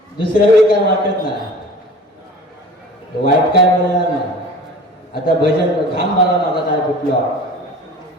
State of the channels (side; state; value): both; normal; correlation 0.41